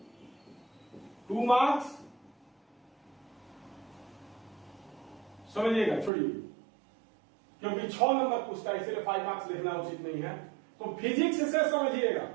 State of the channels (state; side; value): drops out; left; at 6.1 s